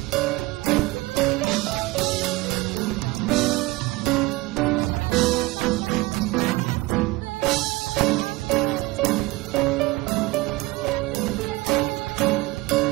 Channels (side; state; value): left; quieter; 21.1 dB